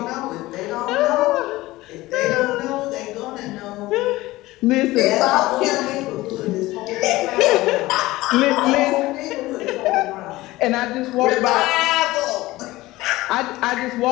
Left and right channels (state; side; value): quieter; right; 18.5 dB